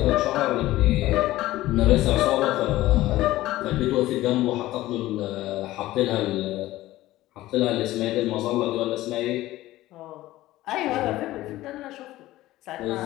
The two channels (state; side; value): quieter; right; 16.4 dB